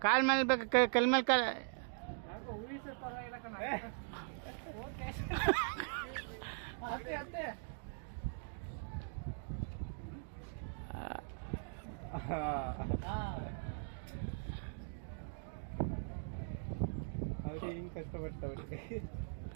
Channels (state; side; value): silent; left; digital silence